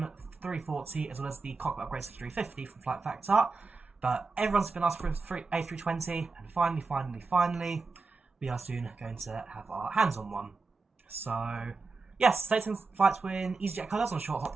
340, as well as the cockpit upgrades to 350 from Flight Factor. But everyone's been asking for an A320, and finally, we are soon going to have our hands on one. So, yes, taking flights with EasyJet colours on a short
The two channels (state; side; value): quieter; left; 4.1 dB